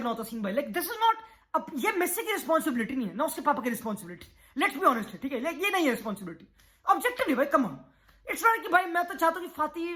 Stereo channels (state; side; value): identical; both; correlation 1.00